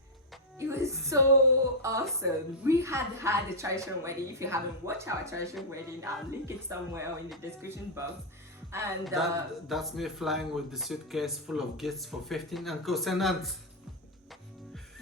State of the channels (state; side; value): normal; both; correlation -0.03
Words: It was so awesome. We had a traditional wedding. If you haven't watched our traditional wedding, I'll link it somewhere in the description box. And that's me flying with the suitcase full of gifts for 15 uncles and aunts.